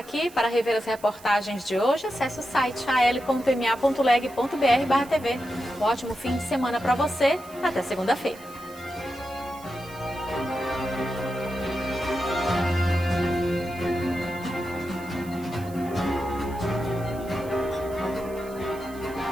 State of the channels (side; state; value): right; noise; hiss, 21 dB below the sound